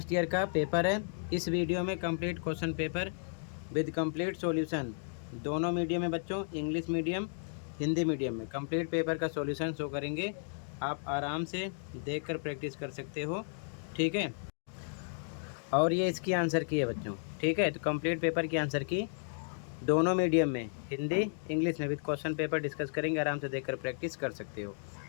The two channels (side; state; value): right; silent; digital silence